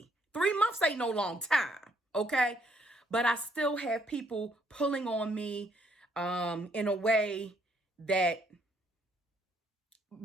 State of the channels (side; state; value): both; normal; correlation 0.69